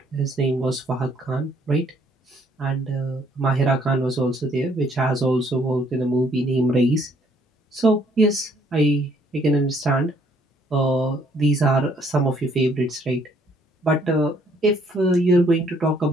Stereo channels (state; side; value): normal; both; correlation 0.65